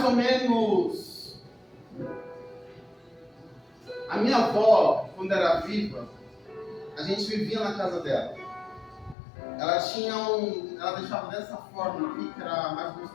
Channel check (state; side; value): drops out; right; at 9.2 s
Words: ou menos... A minha avó, quando era viva, a gente vivia na casa dela. Ela tinha ela deixava dessa forma aqui, que era mais